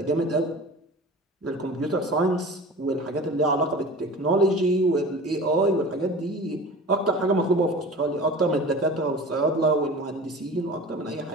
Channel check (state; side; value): normal; both; correlation 0.37